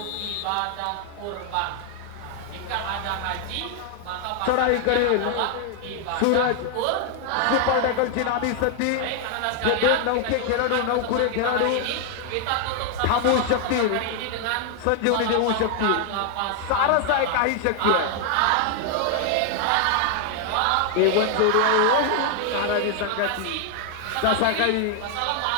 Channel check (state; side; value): different; both; correlation 0.00